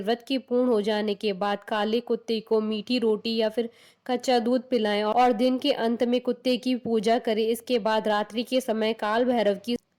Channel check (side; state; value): both; identical; correlation 1.00